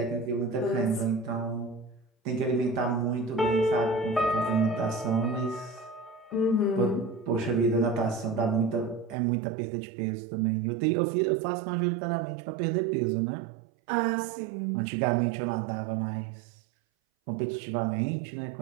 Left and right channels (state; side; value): drops out; left; at 9.2 s